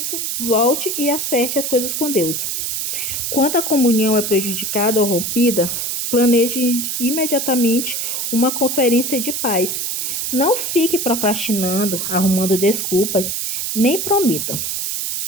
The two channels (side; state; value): right; noise; hiss, 2 dB below the sound